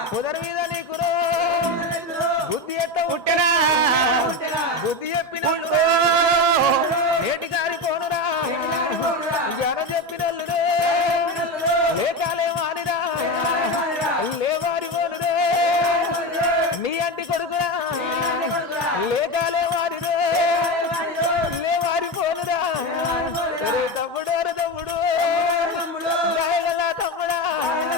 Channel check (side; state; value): both; normal; correlation 0.19